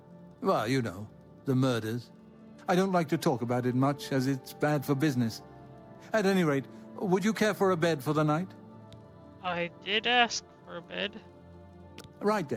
well, you know, the murders. I don't like to talk about it much, as it's bad for business. At any rate, would you care for a bed for the night? I did ask for a bed. Right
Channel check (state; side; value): identical; both; correlation 1.00